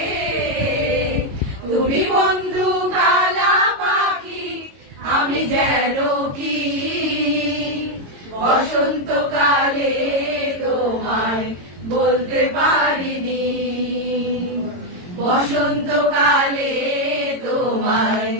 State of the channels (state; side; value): late; left; 22 ms